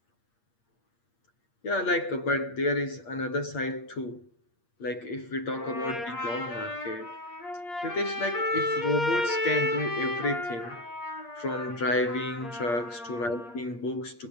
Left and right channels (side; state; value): right; late; 8.5 ms